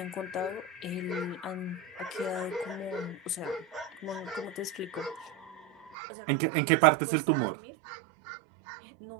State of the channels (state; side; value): drops out; left; at 6.0 s